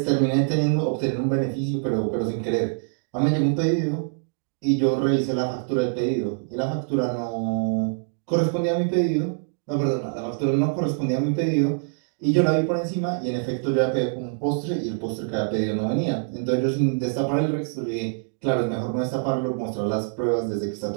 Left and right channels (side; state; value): left; silent; digital silence